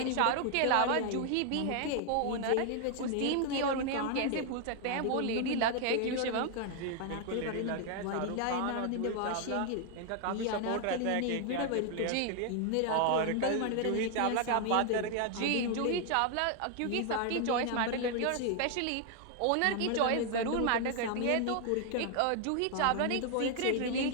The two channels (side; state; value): both; different; correlation 0.00